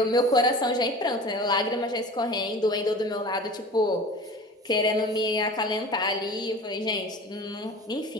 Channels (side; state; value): both; normal; correlation 0.38